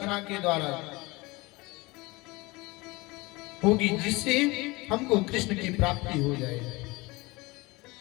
के द्वारा होगी जिससे हमको कृष्ण की प्राप्ति हो जाए।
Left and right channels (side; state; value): right; quieter; 23.1 dB